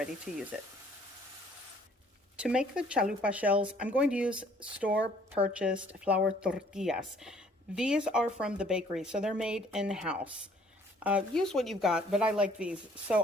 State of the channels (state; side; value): normal; both; correlation 0.59